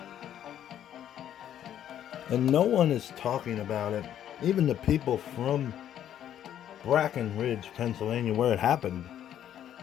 and no one is talking about it. Even the people from Breckenridge, Pennsylvania, where it happened.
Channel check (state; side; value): quieter; right; 10.6 dB